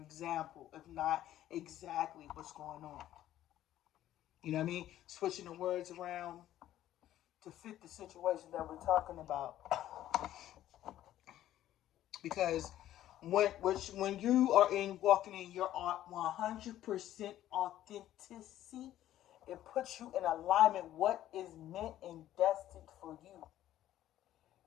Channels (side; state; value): right; quieter; 12.9 dB